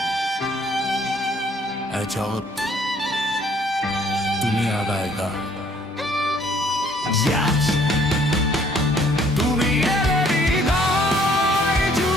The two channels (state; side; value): normal; both; correlation 0.61